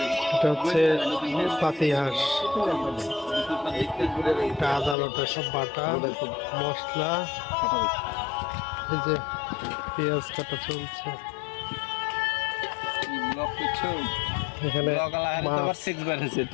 এটা হচ্ছে পাতিহাঁস, এটা আদা বাটা সব বাটা মশলা, এই যে পেঁয়াজ কাটা চলছে। এখানে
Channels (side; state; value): right; drops out; at 5.0 s